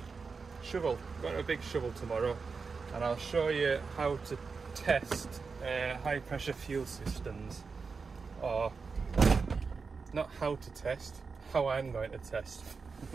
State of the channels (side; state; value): left; quieter; 4.9 dB